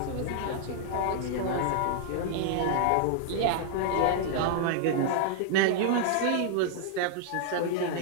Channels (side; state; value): both; different; correlation -0.01